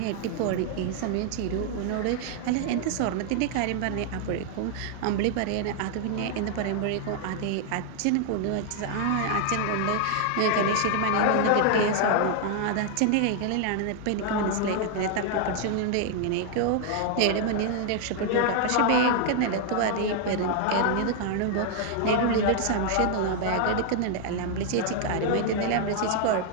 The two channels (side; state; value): both; different; correlation 0.00